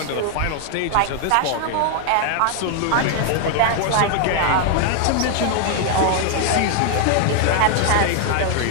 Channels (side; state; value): both; different; correlation 0.00